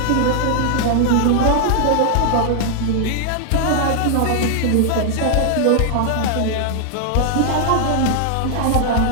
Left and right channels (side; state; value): both; different; correlation 0.00